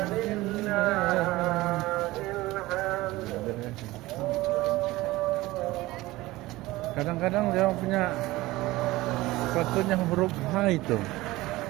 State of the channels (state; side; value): quieter; left; 18.9 dB